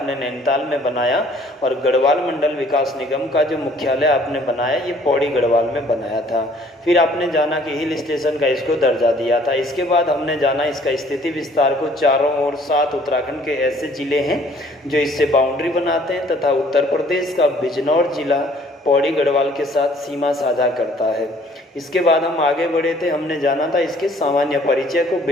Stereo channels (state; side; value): normal; both; correlation 0.57